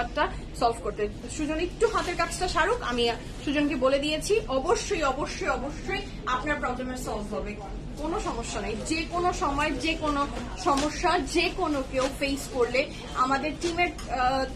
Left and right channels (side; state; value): both; identical; correlation 1.00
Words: সলভ করতে। সুজন একটু হাতের কাজটা সারুক, আমি সুজনকে বলে দিয়েছি অবশ্যই অবশ্যই অবশ্যই আপনার প্রবলেমের সলভ হবে, কোনো সমস্যা নাই। যে কোনো সময় যে কোনো সমস্যা যে কোনো কেউ ফেস করলে আমাদের টিমের